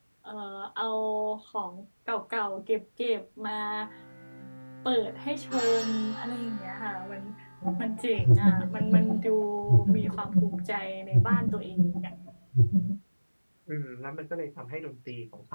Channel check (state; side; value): inverted; both; correlation -1.00